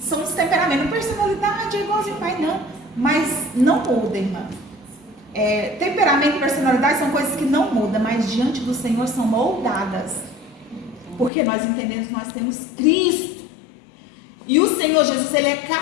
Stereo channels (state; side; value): drops out; right; at 11.3 s